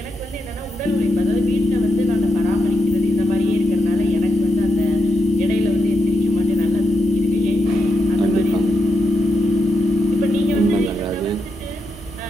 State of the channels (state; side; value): normal; both; correlation 0.84